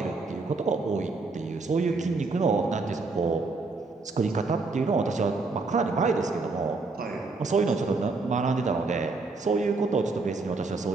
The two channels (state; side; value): quieter; left; 3.8 dB